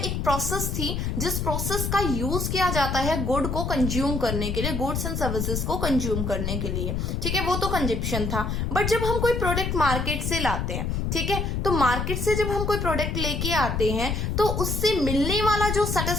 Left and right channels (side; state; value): left; noise; rumble, 1 dB below the sound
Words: प्रोसेस थी जिस प्रोसेस का यूज किया जाता है गुड को कंज्यूम करने के लिए, गुड्स एंड सर्विसेज को कंज्यूम करने के लिए। ठीक है, वो तो कंजप्शन था। बट जब हम कोई प्रोडक्ट मार्केट से लाते हैं, ठीक है, तो मार्केट से जब हम कोई प्रोडक्ट लेके आते हैं तो उससे मिलने वाला जो